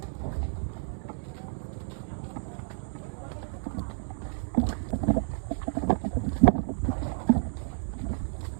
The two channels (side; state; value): left; silent; 57 dB below the other